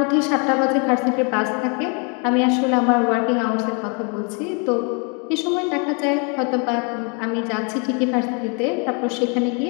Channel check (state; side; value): quieter; right; 35.3 dB